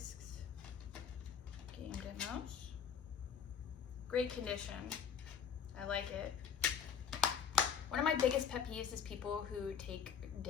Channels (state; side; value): quieter; right; 7.5 dB